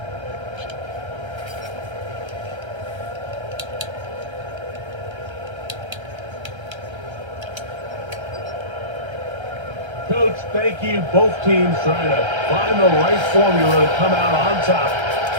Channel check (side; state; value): left; late; 1.3 ms